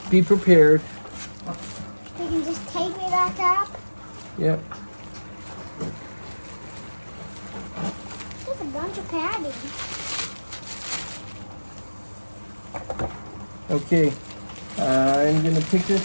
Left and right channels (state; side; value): inverted; both; correlation -1.00